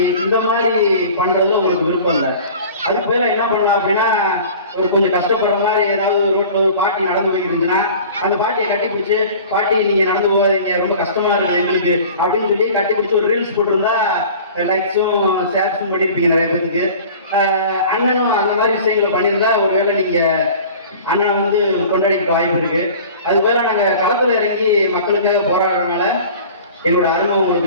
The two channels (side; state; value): both; inverted; correlation -0.43